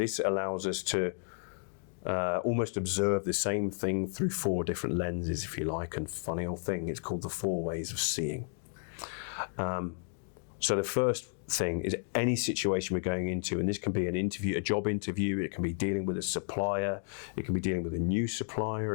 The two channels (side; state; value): right; silent; digital silence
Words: allows us to almost observe the same thing through 4 different lenses, if you like. And funny old thing, it's called the 4 ways of seeing. So the first thing is any situation we're going into, and this can be an interview, a job interview, it can be dealing with a supplier, it can be dealing with a new